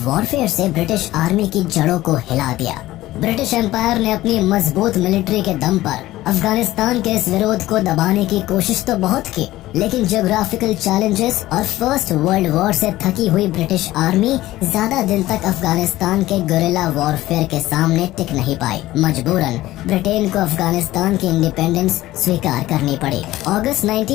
वॉरफेयर से ब्रिटिश आर्मी की जड़ों को हिला दिया। ब्रिटिश एम्पायर ने अपनी मजबूत मिलिट्री के दम पर अफगानिस्तान के इस विरोध को दबाने की कोशिश तो बहुत की, लेकिन ज्योग्राफिकल चैलेंजेस और फर्स्ट वर्ल्ड वॉर से थकी हुई ब्रिटिश आर्मी ज्यादा दिन तक अफगानिस्तान के गुरिल्ला वॉरफेयर के सामने टिक नहीं पाई। मजबूरन ब्रिटेन को अफगानिस्तान की इंडिपेंडेंस स्वीकार करनी पड़ी। अगस्त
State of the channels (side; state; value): right; quieter; 16.2 dB